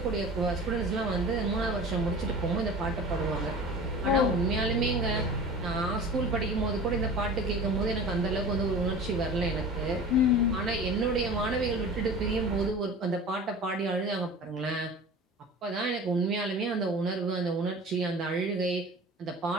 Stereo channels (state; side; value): normal; both; correlation 0.38